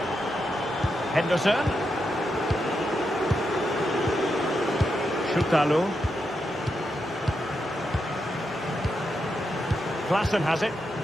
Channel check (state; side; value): normal; both; correlation 0.85